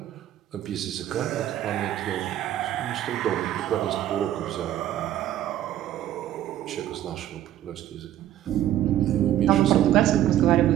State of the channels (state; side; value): quieter; left; 12.3 dB